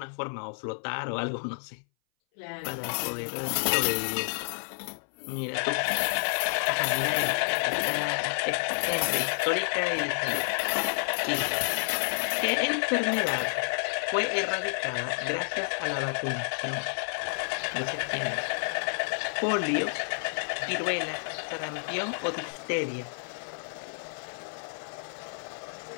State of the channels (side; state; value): right; silent; 58 dB below the other